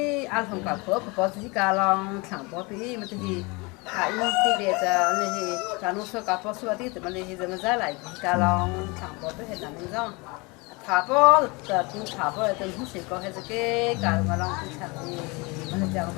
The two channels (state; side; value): quieter; right; 27.1 dB